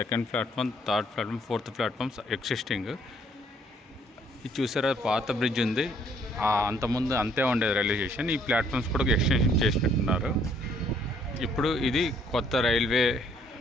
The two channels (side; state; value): both; normal; correlation 0.64